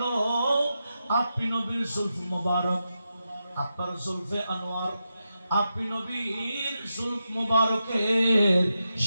আপনি নবীর জুলফ মুবারক, আপনার জুলফে আনোয়ার, আপনি নবীর জুলফ মুবারকের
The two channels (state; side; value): inverted; both; correlation -0.88